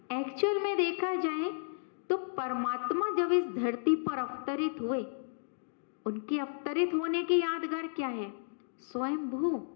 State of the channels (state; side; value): silent; right; digital silence